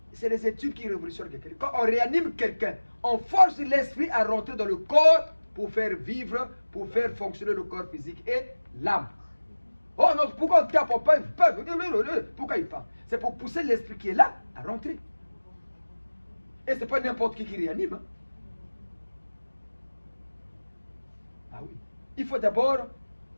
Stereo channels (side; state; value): both; inverted; correlation -1.00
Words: c'est les études qui révolutionnent quelqu'un. Quand on réanime quelqu'un, on force l'esprit à rentrer dans le corps pour faire vivre, pour faire fonctionner le corps physique et l'âme. Oh non, pourquoi on tape, on parle? Pourquoi il parle? C'est pour pousser l'esprit qui est là à rentrer. Et ce n'est pas n'importe qui réanime. Hein. Ah oui. Il faut d'abord